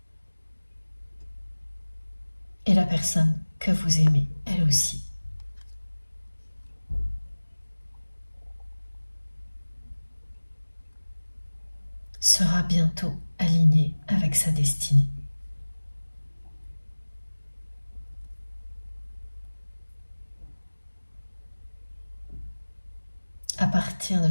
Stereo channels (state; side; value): inverted; both; correlation -1.00